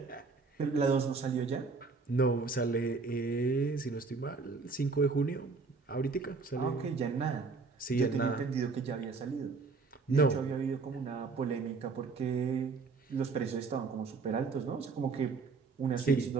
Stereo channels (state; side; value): quieter; left; 4.4 dB